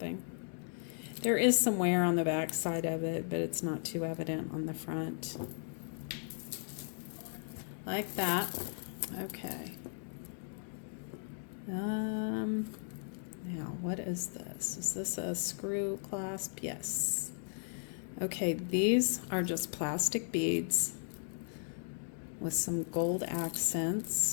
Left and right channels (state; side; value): silent; right; digital silence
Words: There is some wear on the back side of it, but it's not too evident on the front. Like that. Okay. Now, what is this? Is this a screw clasp? Yes. Okay, these are just plastic beads with some gold